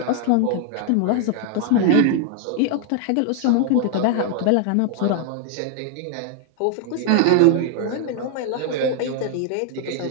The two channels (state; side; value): different; both; correlation 0.00